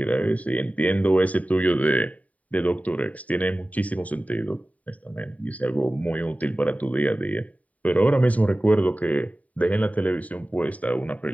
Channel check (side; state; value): right; late; 0.070 ms